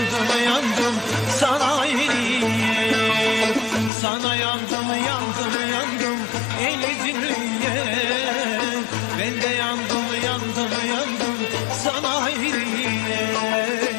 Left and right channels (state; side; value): drops out; right; at 3.9 s